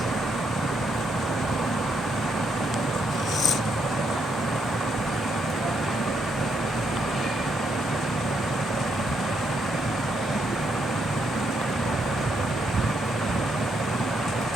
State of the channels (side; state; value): both; normal; correlation 0.76